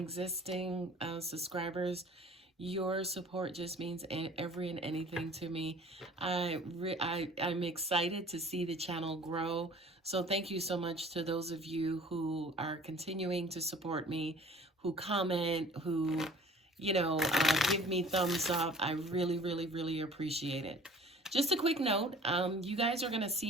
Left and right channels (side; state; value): both; normal; correlation 0.48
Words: subscribers. Your support just means every and anything to me. I'm excited to see the channel grow. So thank you so much to those of you who are continuing to support me, who comment, who give me thumbs up. I really appreciate it. Just a quick note, you guys are going to